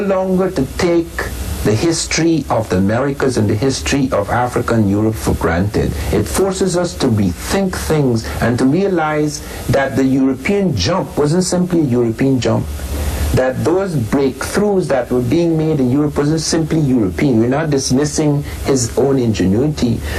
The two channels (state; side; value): identical; both; correlation 1.00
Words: to take the history of the Americas and the history of Africa and Europe for granted. It forces us to rethink things and to realize that the European jump wasn't simply a European jump. That those breakthroughs that were being made in Europe wasn't simply European. We're not dismissing his own ingenuity,